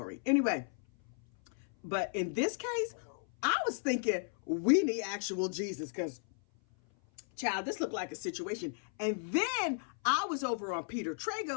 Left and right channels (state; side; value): silent; right; 55 dB below the other